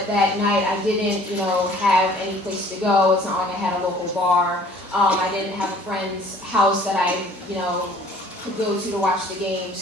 that night I didn't, have any place to go. It's not like I had a local bar. I didn't have a friend's house that I, could go to watch the game.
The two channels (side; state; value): both; normal; correlation 0.53